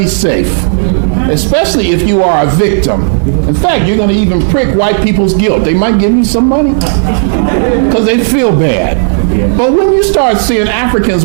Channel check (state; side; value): silent; left; digital silence